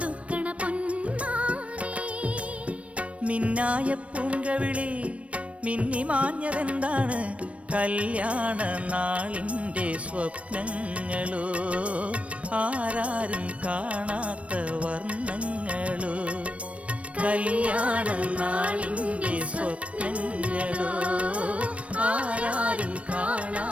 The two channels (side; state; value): left; late; 0.063 ms